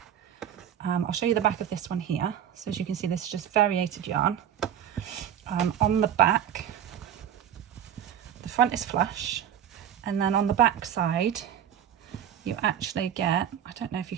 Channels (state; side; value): quieter; left; 9.7 dB